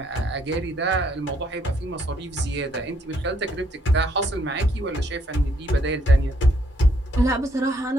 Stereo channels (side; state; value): both; normal; correlation 0.70